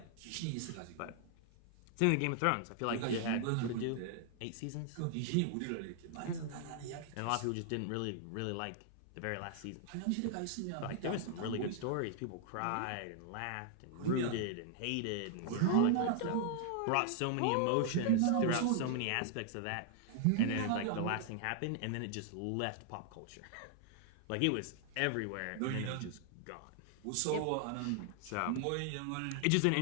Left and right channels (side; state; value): both; different; correlation 0.00